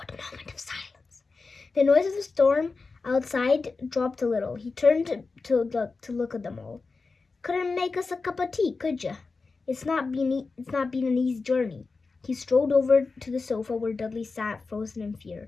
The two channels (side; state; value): right; quieter; 4.1 dB